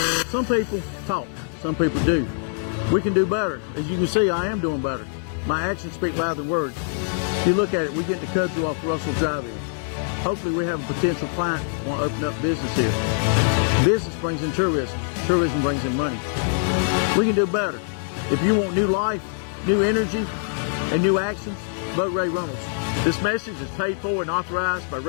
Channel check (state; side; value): silent; right; 63 dB below the other